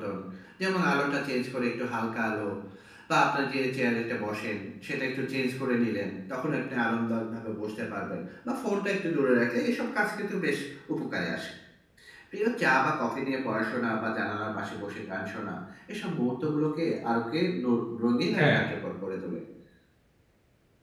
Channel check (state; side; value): identical; both; correlation 1.00